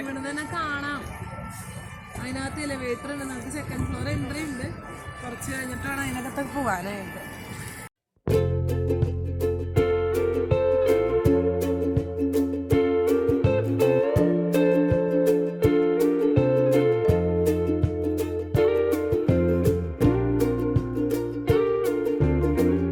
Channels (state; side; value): identical; both; correlation 1.00